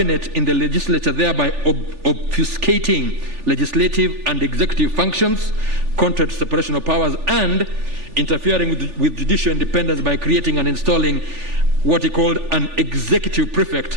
in the legislature, thereby obfuscating legislative and executive functions, contrary to separation of powers, and interfering with judicial independence by creating and installing what he called an executive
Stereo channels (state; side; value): late; left; 3.4 ms